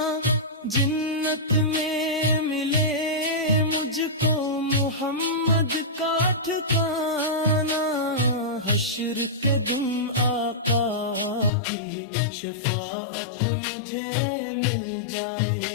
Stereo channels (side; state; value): right; drops out; at 11.5 s